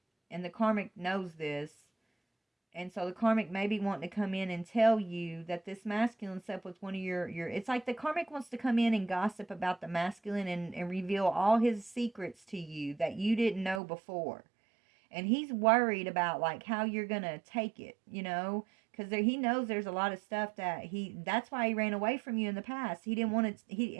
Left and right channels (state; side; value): drops out; left; at 13.8 s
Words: And the karmic knows this. And so the karmic may be wanting to come in and tell you that this masculine slept with one of your it's like the karmic wants to come in and gossip about the masculine and reveal all his secrets to you that you didn't know before. And he's worried about like how you're going to take it, because he knows there's a lot of stuff that's why he ran away from you in the past. He didn't want to,